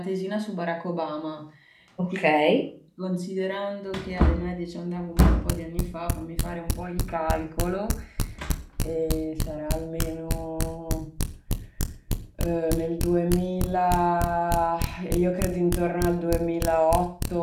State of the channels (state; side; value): identical; both; correlation 1.00